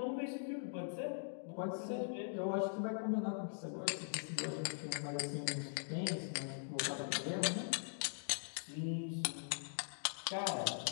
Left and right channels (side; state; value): right; silent; digital silence